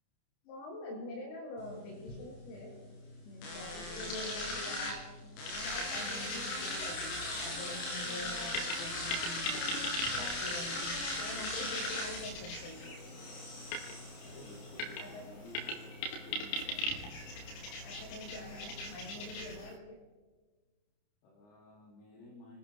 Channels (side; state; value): right; late; 29 ms